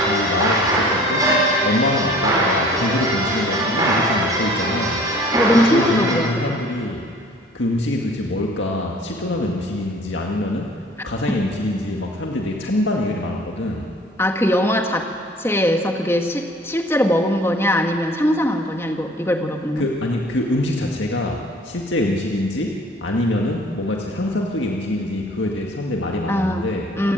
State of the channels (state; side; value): normal; both; correlation 0.51